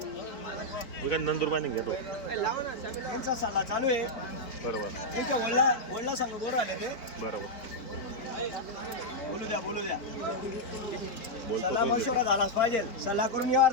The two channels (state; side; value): late; right; 4.2 ms